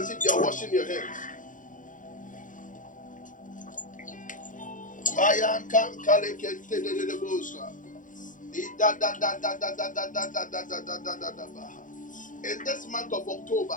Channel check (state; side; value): late; right; 0.38 ms